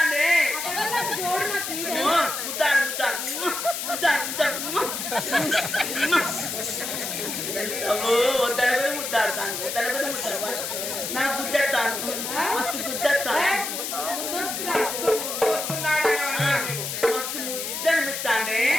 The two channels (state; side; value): noise; left; hiss, 4 dB below the sound